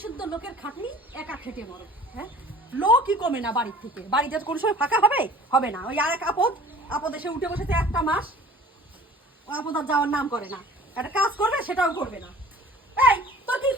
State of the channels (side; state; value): both; normal; correlation 0.48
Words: শুদ্ধ লোকের খাটনি, একা খেটে মরো, হ্যাঁ লোকই কমে না বাড়ির থেকে। বাড়িতে কোনো সময় ফাঁকা হবে? হবে না। ওই আর এক আপদ এসে উঠে বসেছে একটা মাস, ও আপদ আর যাওয়ার নাম করে না। একটা কাজ করবে সেটাও করবে না। এই তোর কি